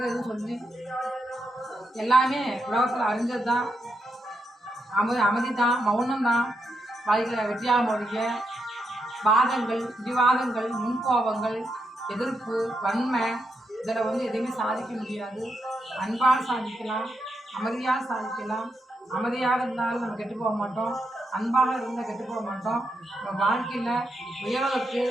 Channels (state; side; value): normal; both; correlation 0.82